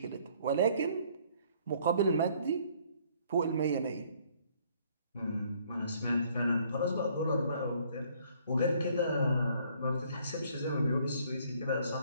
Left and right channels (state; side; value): inverted; both; correlation -0.62